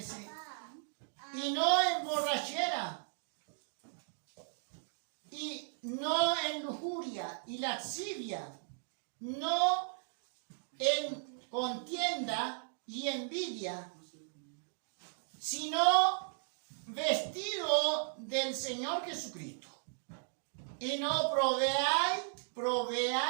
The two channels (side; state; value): left; silent; digital silence